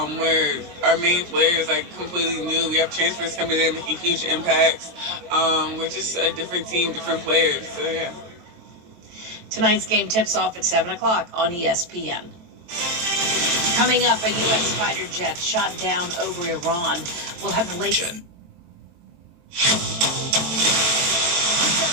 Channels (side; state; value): left; late; 23 ms